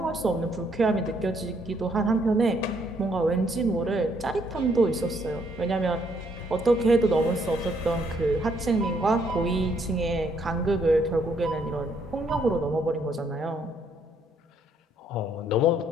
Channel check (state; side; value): normal; both; correlation 0.69